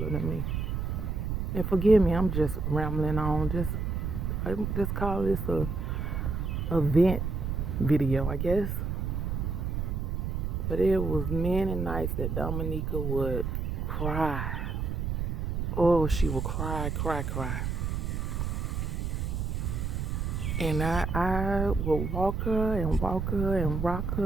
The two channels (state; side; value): noise; right; rumble, 1 dB below the sound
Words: than me. And forgive me, I'm just rambling on. I just call this a vent video, I guess. But it was many nights that Dominica would cry. Oh, she would cry. And I would walk her and rock